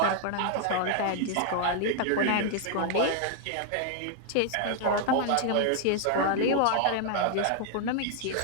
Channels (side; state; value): both; different; correlation 0.00